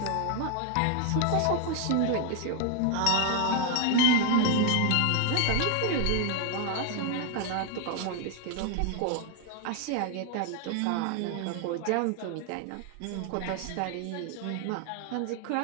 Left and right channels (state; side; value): different; both; correlation 0.00